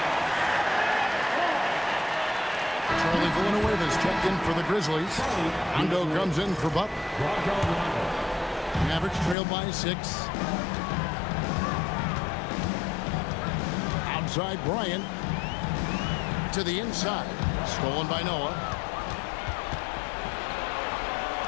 Villanueva's checked in for the Grizzlies. Rondo comes in for Butler. Mavericks trail by 6. Outside Bryant. To the inside. Stolen by Noah.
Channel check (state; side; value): drops out; right; at 9.3 s